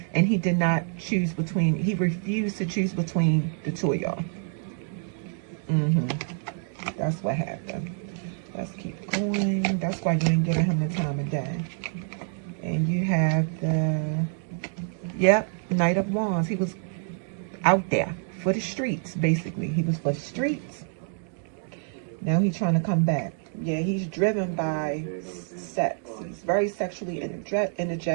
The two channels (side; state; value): left; silent; 60 dB below the other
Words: and he did not choose between, he refused to choose between the two of y'all. That's what happened. Let's keep going. That's why you ain't giving him the time of day. And you have the, yep, Knight of Wands. He was out there for the streets, basically. He was for the streets. Now he's trying to come back. Yeah, he's driven by sex. He's very sexually